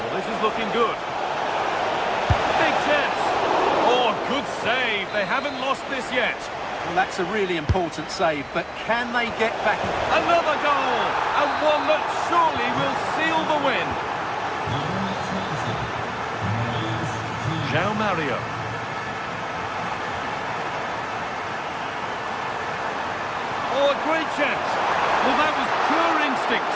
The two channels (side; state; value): both; identical; correlation 1.00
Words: Well, this is looking good. Big chance. Oh, good save. They haven't lost this yet. Well, that's a really important save, but can they get back? Another goal, and one that surely will seal the win. João Mario. Oh, a great chance. Well, that was pure instinct.